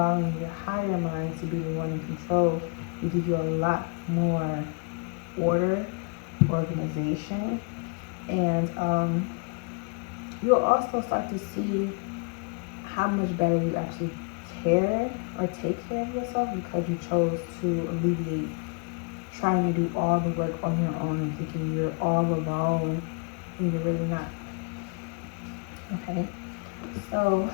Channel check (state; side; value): quieter; right; 35.1 dB